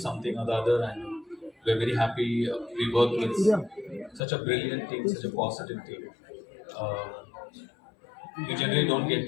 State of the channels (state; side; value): drops out; right; at 4.2 s